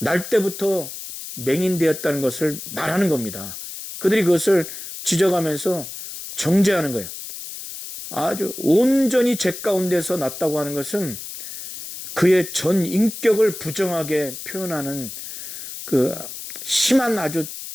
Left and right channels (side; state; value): left; noise; hiss, 10 dB below the sound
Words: 때부터 맹인되었다는 것을 말하는 겁니다. 그들이 그것을 지적하면서 정죄하는 거예요. 아주 온전히 죄 가운데서 났다고 하는 것은 그의 전 인격을 부정하게 표현하는 그 심한 아주